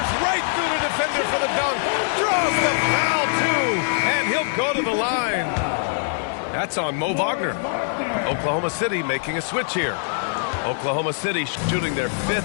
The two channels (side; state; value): right; silent; 61 dB below the other